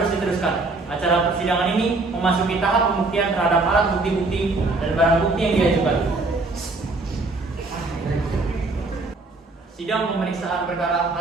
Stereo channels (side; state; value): left; quieter; 3.4 dB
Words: diteruskan. Acara persidangan ini memasuki tahap pembuktian terhadap alat bukti-bukti dan barang bukti yang diajukan. Sidang pemeriksaan perkara